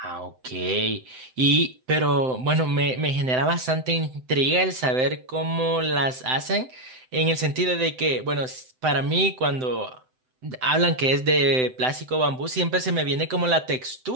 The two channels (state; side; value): late; left; 7.8 ms